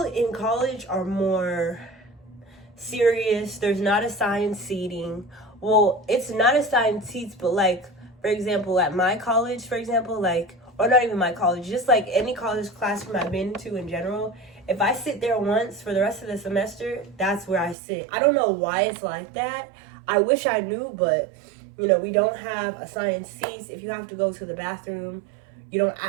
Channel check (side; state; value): left; drops out; at 17.8 s